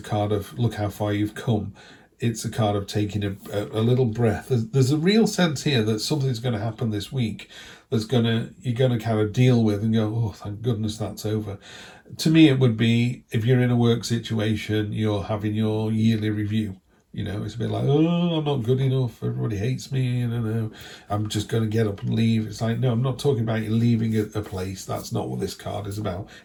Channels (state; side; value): identical; both; correlation 1.00